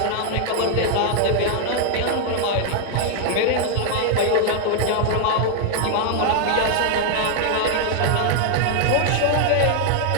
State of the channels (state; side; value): different; both; correlation 0.00